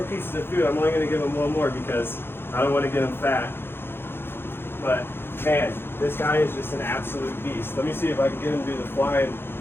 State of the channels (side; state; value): right; late; 0.11 ms